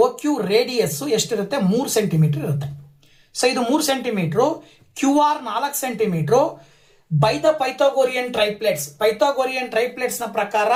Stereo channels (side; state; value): both; identical; correlation 1.00